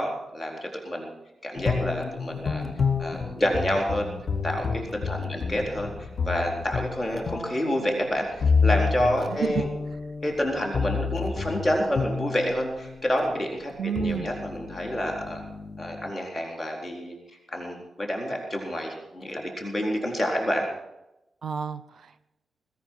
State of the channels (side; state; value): both; normal; correlation 0.89